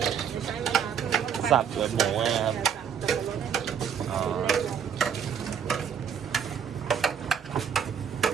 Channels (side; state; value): left; quieter; 7.7 dB